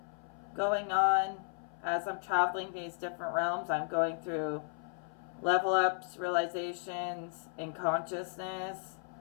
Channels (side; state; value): right; silent; 55 dB below the other